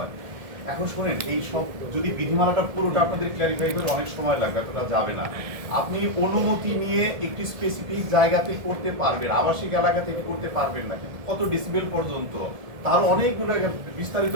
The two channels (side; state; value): left; late; 1.7 ms